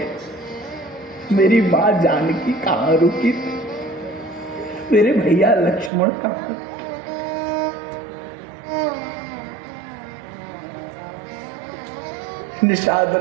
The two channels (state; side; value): drops out; left; at 5.9 s